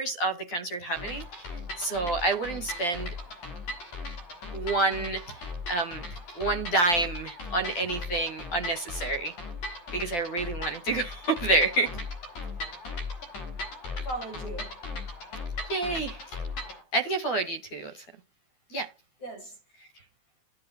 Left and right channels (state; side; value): late; right; 12 ms